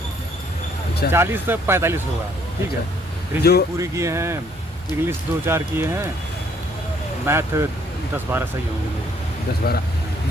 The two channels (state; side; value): normal; both; correlation 0.65